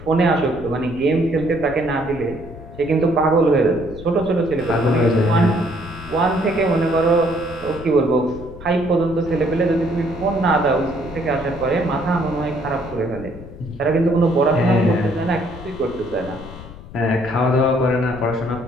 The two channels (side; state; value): left; noise; rumble, 15 dB below the sound